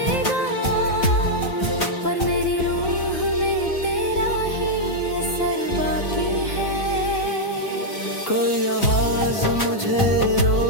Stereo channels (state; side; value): late; right; 3.7 ms